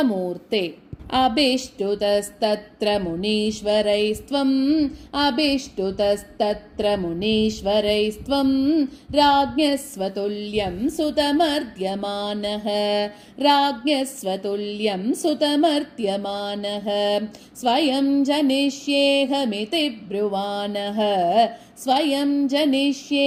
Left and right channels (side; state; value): both; identical; correlation 1.00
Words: अभिष्टुतस्तत्र मुनीश्वरैस्त्वम् अभिष्टुतस्तत्र मुनीश्वरैस्त्वं राज्ञस्वतुल्यं सुतमर्त्यमानः राज्ञस्वतुल्यं सुतमर्त्यमानः स्वयं जनिष्येहमिति ब्रुवाणः स्वयं